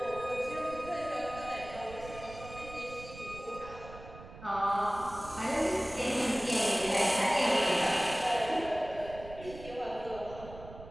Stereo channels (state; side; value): noise; right; rumble, 15 dB below the sound